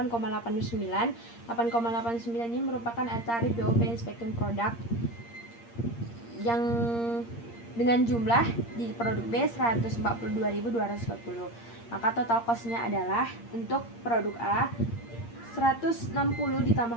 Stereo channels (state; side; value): late; right; 8.6 ms